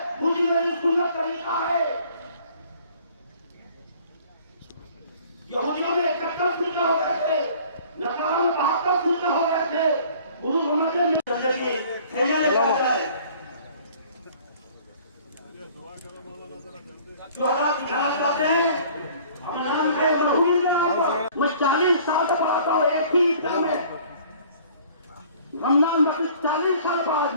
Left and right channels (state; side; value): inverted; both; correlation -0.52